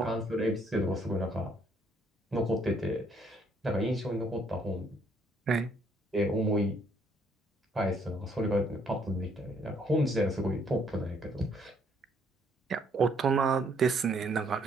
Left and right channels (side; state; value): both; normal; correlation 0.67